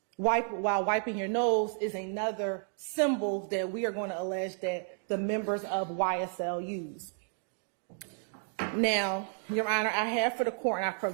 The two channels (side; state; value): left; silent; 57 dB below the other